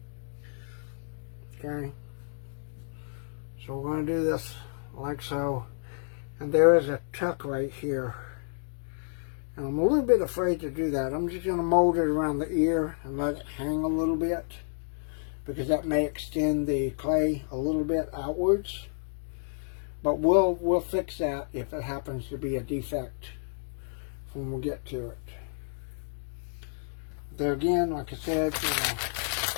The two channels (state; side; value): silent; right; digital silence